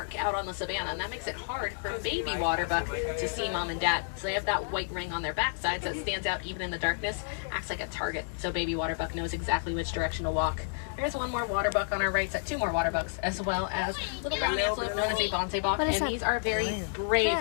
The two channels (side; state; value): right; silent; digital silence